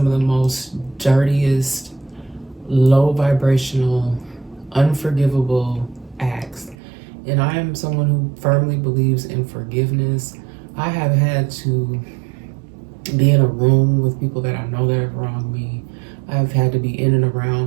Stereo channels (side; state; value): left; drops out; at 6.8 s